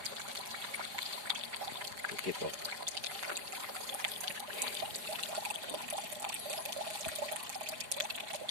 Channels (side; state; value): left; late; 4.9 ms